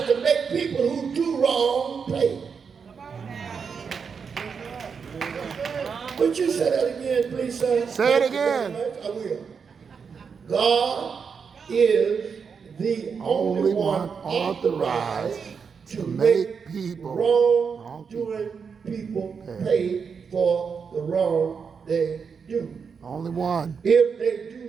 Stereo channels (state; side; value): quieter; left; 6.0 dB